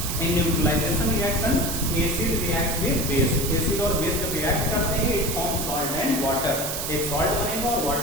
In neutralization reaction acid reacts with base, acid और बेस जब रिएक्ट करते हैं it forms salt and water, एक सॉल्ट बनेगा और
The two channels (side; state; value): right; noise; hiss, 3 dB below the sound